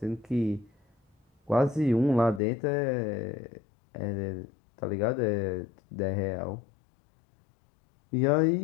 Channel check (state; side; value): drops out; right; at 2.4 s